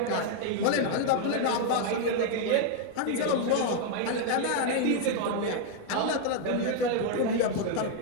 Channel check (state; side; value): different; both; correlation 0.00